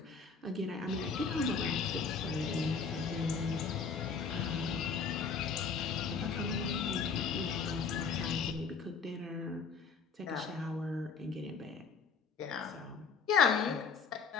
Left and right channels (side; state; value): right; quieter; 5.4 dB